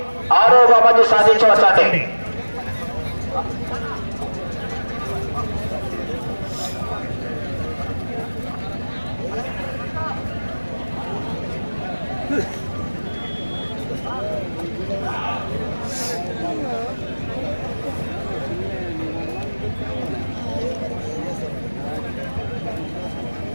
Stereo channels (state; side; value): inverted; both; correlation -1.00